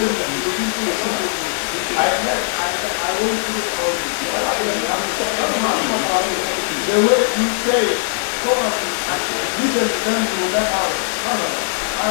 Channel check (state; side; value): silent; right; digital silence